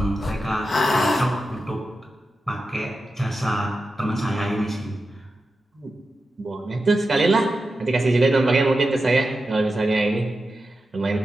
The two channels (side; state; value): both; normal; correlation 0.91